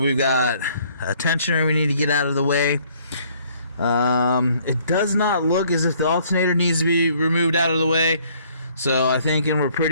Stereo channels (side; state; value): both; inverted; correlation -0.62